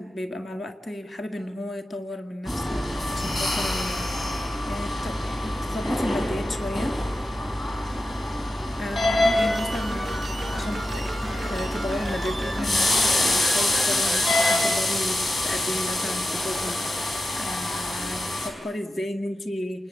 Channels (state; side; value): normal; both; correlation 0.91